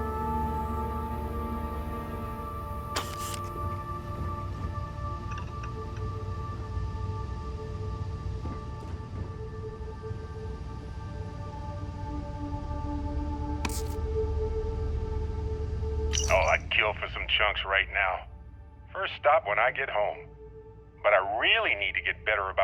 Oh, I'd kill for some chunks right now. First stop when I get home. But I really need to get better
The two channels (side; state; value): both; identical; correlation 1.00